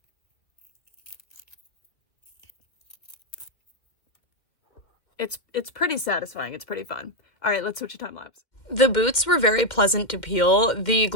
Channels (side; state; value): right; late; 2.1 ms